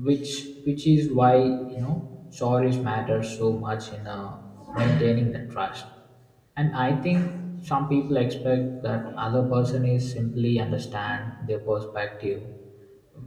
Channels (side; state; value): both; identical; correlation 1.00